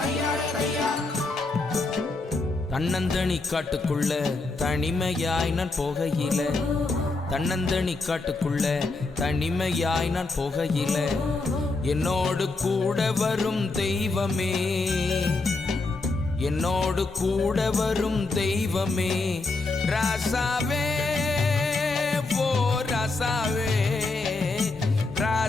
தையா. தன்னந்தனி காட்டுக்குள்ள தனிமையாய் நான் போகையில, தன்னந்தனி காட்டுக்குள்ள தனிமையாய் நான் போகையில, என்னோடு கூட வரும் தெய்வமே, என்னோடு கூட வரும் தெய்வமே, ராசாவே ஓ ராசாவே,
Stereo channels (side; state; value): right; quieter; 3.5 dB